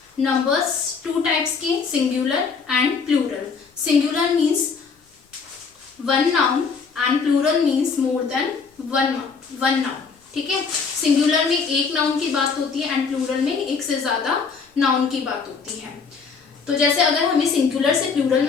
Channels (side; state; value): right; quieter; 5.3 dB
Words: Numbers two types के singular and plural. Singular means one noun and plural means more than one noun. ठीक है, singular में एक noun की बात होती है and plural में एक से ज्यादा नाउन की बात होती है. तो जैसे अगर हमें सिंगुलर से प्लूरल